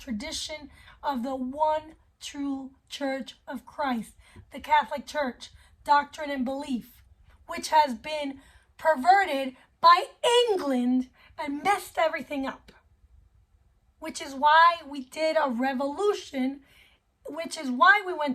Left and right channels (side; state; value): both; identical; correlation 1.00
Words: of the one true Church of Christ, the Catholic Church, doctrine and belief, which has been perverted by England and messed everything up. Which is why we did a revolution, which is why we